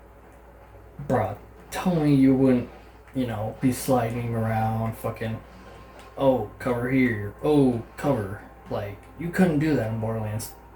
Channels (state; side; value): identical; both; correlation 1.00